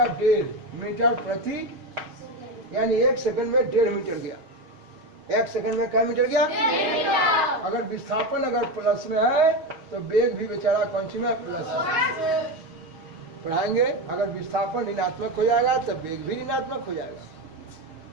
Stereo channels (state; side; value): late; left; 6.3 ms